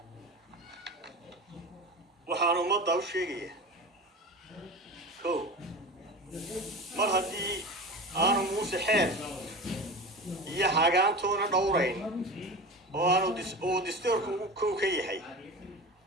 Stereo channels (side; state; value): both; normal; correlation 0.31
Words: waxaan ummadda u sheegayaa mar haddii aanu Muuse xeer iyo hagaantoona dhowrayn oo aanu dastuurku kow ka yahay